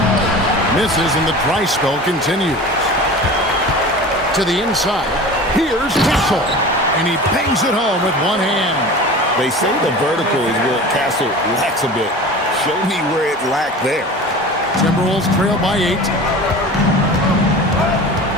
Misses and the dry spell continues. To the inside. Here's Castle. And he bangs it home with one hand. They say the vertical is where Castle lacks a bit. Show me where it lacked there. Timberwolves trail by 8.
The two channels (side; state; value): both; normal; correlation 0.36